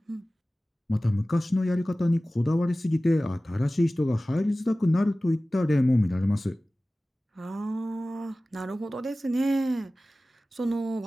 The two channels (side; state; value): both; normal; correlation 0.97